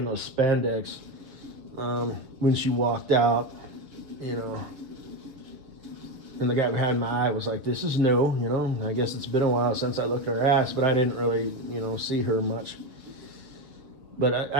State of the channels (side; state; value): left; late; 7.2 ms